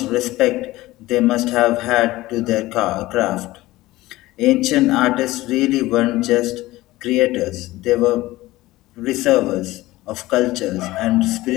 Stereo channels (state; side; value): quieter; right; 18.0 dB